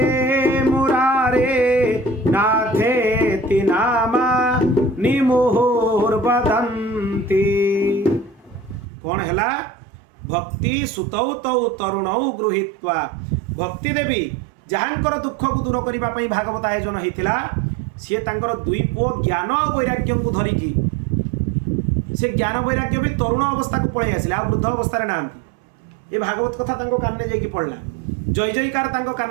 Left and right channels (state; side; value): drops out; left; at 8.8 s